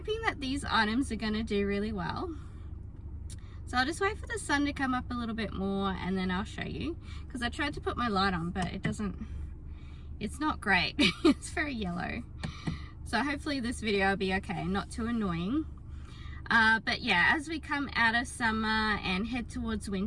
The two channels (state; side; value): identical; both; correlation 1.00